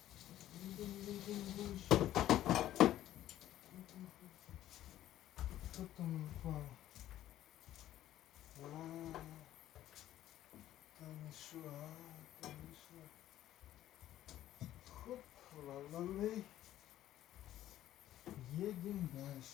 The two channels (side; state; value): right; quieter; 13.0 dB